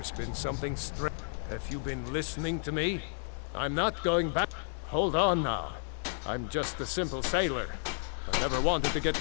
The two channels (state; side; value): silent; right; digital silence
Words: been something strange. Have you been listening to me? I'm not going back. Hold on now. I'm just a simple sailor. I never wanted to